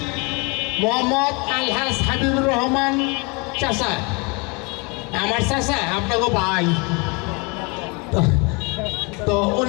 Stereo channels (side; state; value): right; quieter; 29.7 dB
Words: মোহাম্মদ আলহাজ হাবিবুর রহমান চাচা, আমার চাচা আপনাকে ভাই, তো